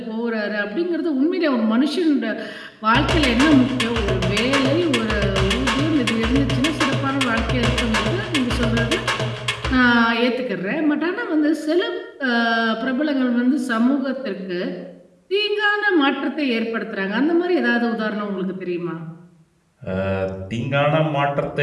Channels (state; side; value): identical; both; correlation 1.00